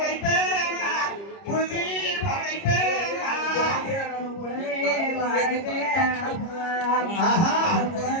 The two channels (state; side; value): late; right; 30 ms